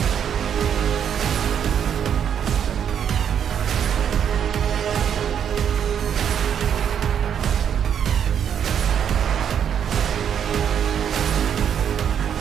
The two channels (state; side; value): quieter; left; 8.6 dB